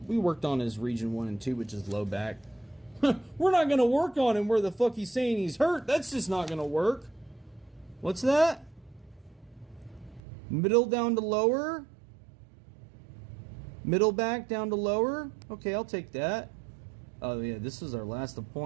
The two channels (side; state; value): left; drops out; at 10.2 s